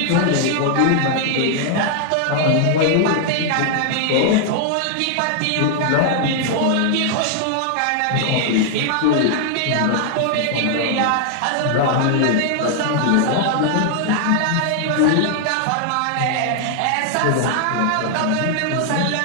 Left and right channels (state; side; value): different; both; correlation 0.00